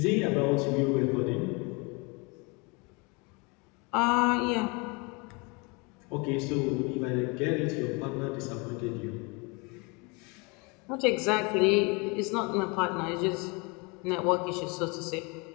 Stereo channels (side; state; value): right; quieter; 29.7 dB